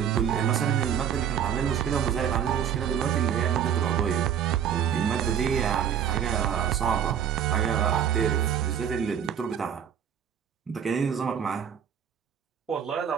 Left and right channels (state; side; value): quieter; left; 8.7 dB